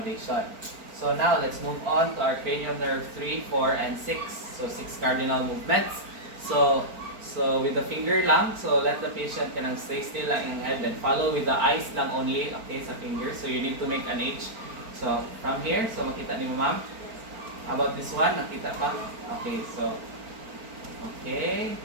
So now let's move on to our cranial nerve 3, 4, and 6. So 6 cardinal movements. So with the finger lang, so let the patient stay still lang in head and follow with the eyes lang only, okay, sa finger. So you need to make an H. So from here, so makita ni mo ma'am? How about this one? Nakita pa? Okay, so okay.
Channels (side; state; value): left; late; 4.4 ms